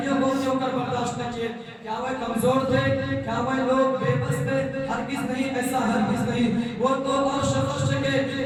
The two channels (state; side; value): identical; both; correlation 1.00